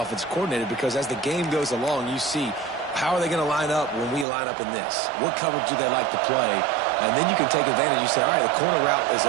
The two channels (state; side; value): drops out; left; at 4.2 s